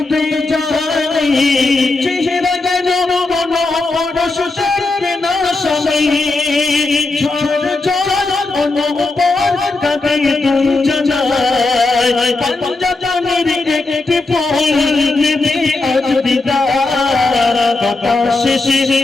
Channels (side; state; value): right; quieter; 3.3 dB